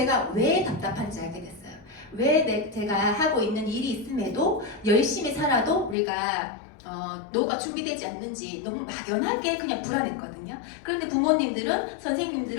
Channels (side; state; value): right; drops out; at 6.0 s